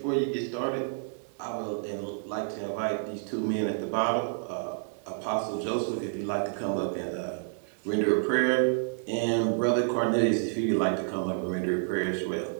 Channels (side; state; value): left; silent; 56 dB below the other